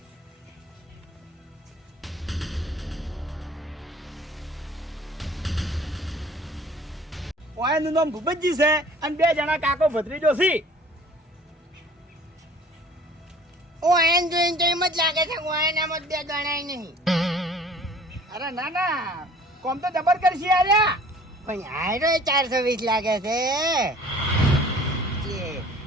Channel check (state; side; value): normal; both; correlation 0.50